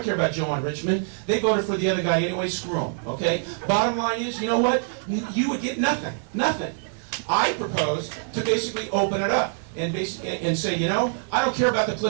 care about Joe on Richmond, they voted for the other guy anyway, screw him, okay? Bottom line is, you know what, you would get nothing, nothing. I propose to basically open it up and say, you know, I don't care about the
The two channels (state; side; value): silent; left; digital silence